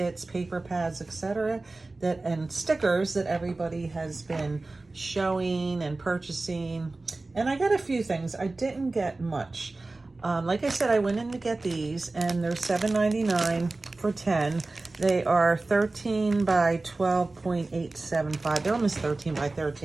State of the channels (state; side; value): quieter; left; 3.2 dB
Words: paper pads, etc. and stickers that everybody has been showing and purchasing. And I got a few things. I didn't get much. Like I said, I went in to get these and they're $7.99 for 10. They are 13 by 12.875. They're almost 13 by